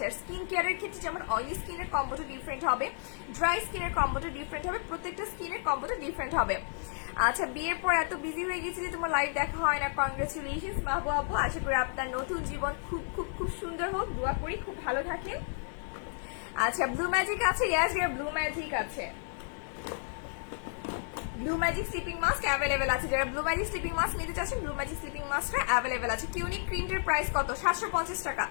আর স্কিন কেয়ারের ক্ষেত্রে যেমন অয়েলি স্কিনের কম্বোটা ডিফারেন্ট হবে, ড্রাই স্কিনের কম্বোটা ডিফারেন্ট হবে, প্রত্যেকটা স্কিনের কম্বোটা ডিফারেন্ট হবে। আচ্ছা, বিয়ের পর এত বিজি হয়ে গেছি যে তোমার লাইভ দেখা হয় না, কংগ্রেচুলেশনস মাহবুব আপু। আশা করি আপনার নতুন জীবন খুব খুব খুব সুন্দর হোক, দোয়া করি খুব ভালো থাকেন। আচ্ছা, ব্লু ম্যাজিক আছে? ইয়েস ডিয়ার, ব্লু ম্যাজিক আছে। Blue magic sleeping mask available আছে, যারা ব্লু ম্যাজিক স্লিপিং মাস্ক নিতে চাচ্ছেন ব্লু ম্যাজিক স্লিপিং মাস্কটা অ্যাভেলেবেল আছে। কিউনিক ক্রিমের প্রাইস কত? 750 টাকা।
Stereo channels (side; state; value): right; silent; 56 dB below the other